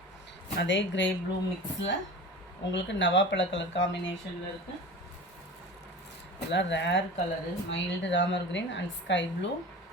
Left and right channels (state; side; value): normal; both; correlation 0.34